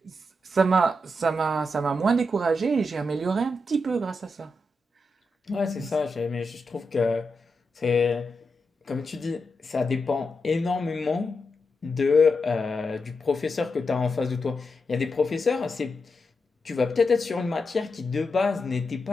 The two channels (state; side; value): normal; both; correlation 0.86